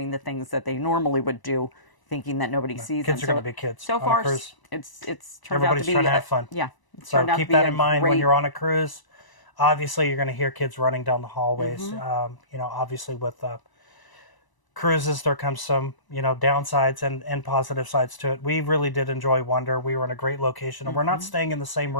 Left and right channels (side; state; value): right; late; 1.0 ms